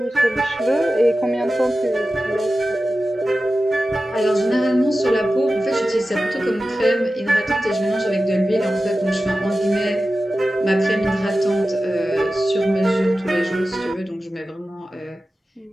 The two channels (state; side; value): normal; both; correlation 0.94